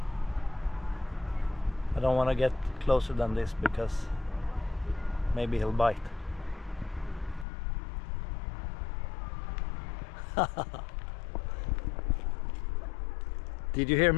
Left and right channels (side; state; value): right; drops out; at 7.5 s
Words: I don't want to get closer than this because maybe he'll bite. Did you hear